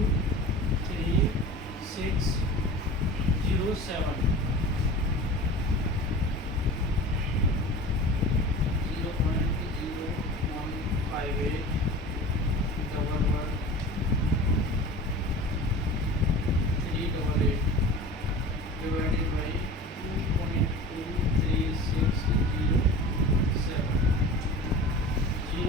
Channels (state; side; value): normal; both; correlation 0.37